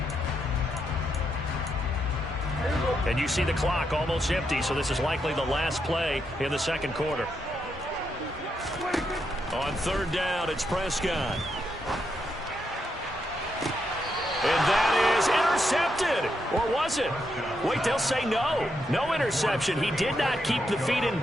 And you see the clock almost empty, so this is likely the last play in the second quarter. On 3rd down, it's Prescott. And that is intercepted. Or was it? Wait, they'll say no. No interception. He did not keep the feet in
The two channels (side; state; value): both; normal; correlation 0.81